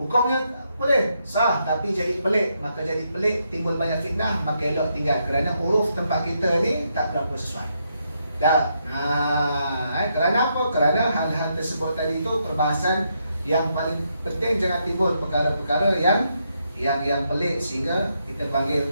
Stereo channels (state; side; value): inverted; both; correlation -0.79